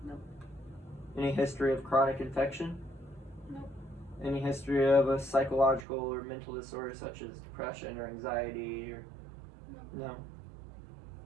No. Any history of chronic infection? No. Any history of a psychological or mental disorder such as depression or anxiety or no?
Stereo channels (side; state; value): left; drops out; at 5.9 s